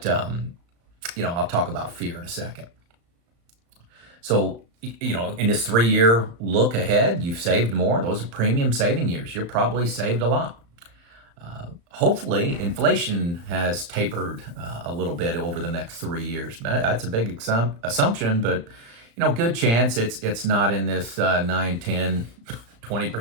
I'll talk about fear in a second. So, in this 3-year look ahead, you've saved more. Those are premium saving years. You're probably saved a lot. Hopefully, inflation has tapered a little bit over the next 3 years. That's a big assumption, but good chance it's not in this 9, 10,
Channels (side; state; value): left; late; 35 ms